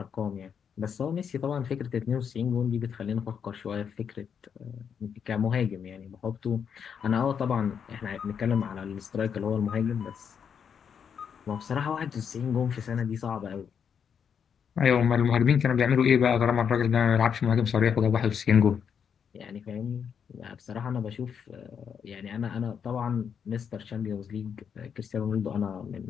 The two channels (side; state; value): right; quieter; 7.3 dB